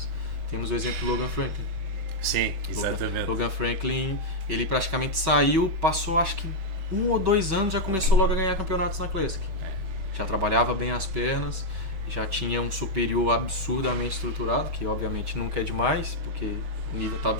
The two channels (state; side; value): late; left; 6.3 ms